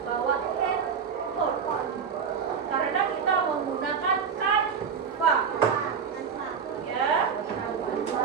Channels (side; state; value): left; quieter; 6.5 dB